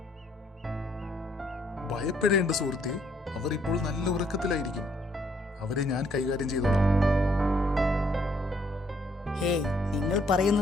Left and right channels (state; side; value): normal; both; correlation 0.68